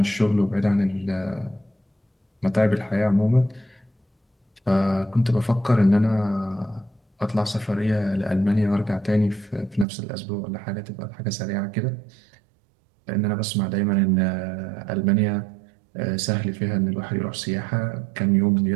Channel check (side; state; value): left; drops out; at 9.9 s